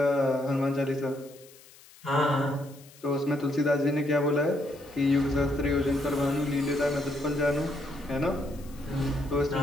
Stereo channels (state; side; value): noise; left; hiss, 24 dB below the sound